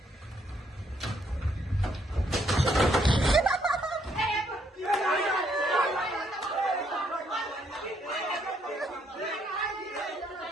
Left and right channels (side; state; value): both; normal; correlation 0.71